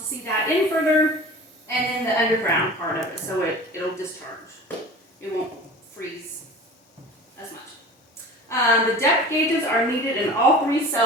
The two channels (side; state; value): both; normal; correlation 0.38